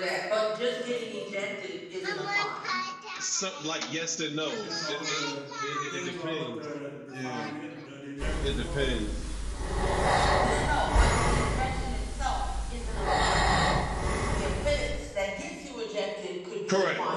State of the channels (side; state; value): both; identical; correlation 1.00